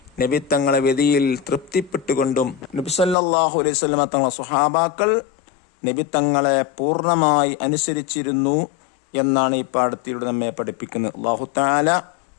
നബി തങ്ങളെ വിധിയിൽ തൃപ്തിപ്പെട്ടുകൊണ്ടും. നബി സല്ലല്ലാഹു അലൈഹി വസല്ലം തങ്ങളുടെ സ്വഹാബാക്കൾ നബി തങ്ങളെ പൂർണ്ണമായി അനുസരിച്ചിരുന്നു എന്നാണ് ഈ പാഠത്തിലൂടെ നമ്മെ പഠിപ്പിക്കുന്നത്. അല്ലാഹു തആല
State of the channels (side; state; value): right; drops out; at 3.2 s